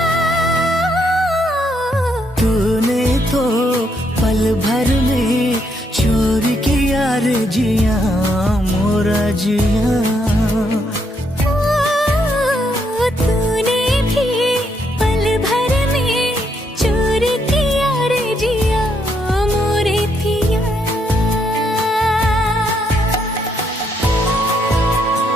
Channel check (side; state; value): both; normal; correlation 0.75